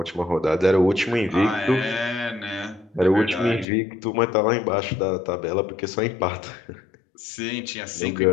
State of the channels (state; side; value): drops out; right; at 3.7 s